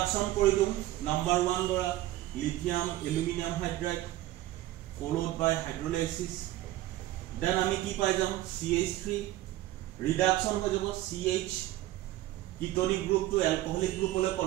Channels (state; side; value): quieter; left; 15.6 dB